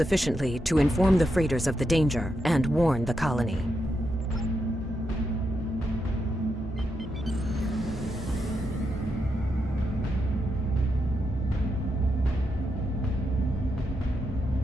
to inform the freighters of the danger and warn the colony.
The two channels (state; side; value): normal; both; correlation 0.84